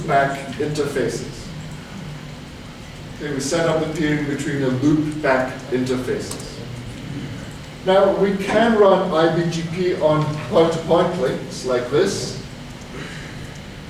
interfaces. Okay, we set up the peering between the loopback interfaces. Now, we can run IBGP on point-to-point links like this.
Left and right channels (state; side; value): identical; both; correlation 1.00